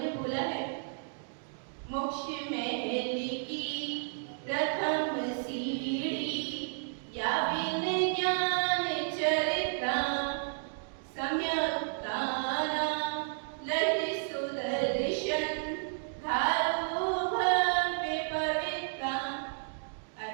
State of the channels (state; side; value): silent; left; digital silence